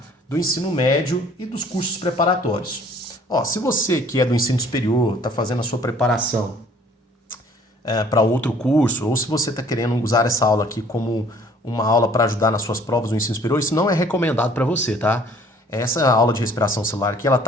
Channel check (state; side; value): normal; both; correlation 0.56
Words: Do ensino médio e dos cursos preparatórios. Ó, se você que é do ensino superior, está fazendo a sua preparação para outro curso, ou se você está querendo usar essa aula aqui como uma aula para ajudar nas suas provas do ensino superior, isso não é recomendado para você, tá? Essa aula de respiração celular aqui, ela